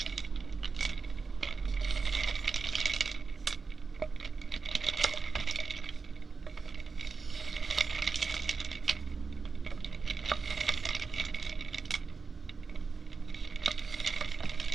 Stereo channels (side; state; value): left; quieter; 4.8 dB